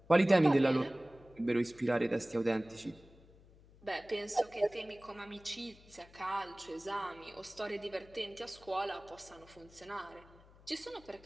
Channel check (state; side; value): noise; left; hum, 24 dB below the sound